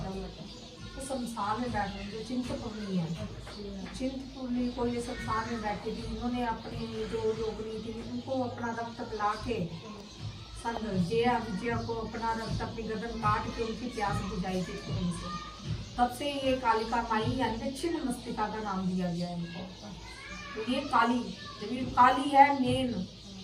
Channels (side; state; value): both; identical; correlation 1.00